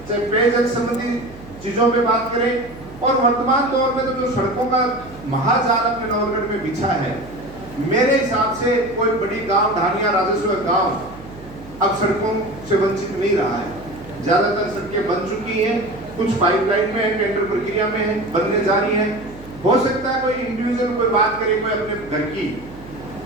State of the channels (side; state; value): right; noise; hum, 19 dB below the sound